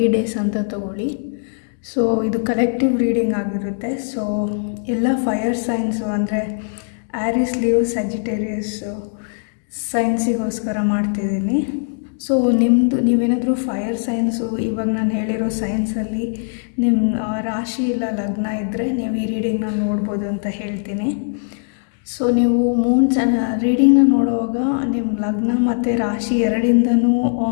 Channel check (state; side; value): silent; right; digital silence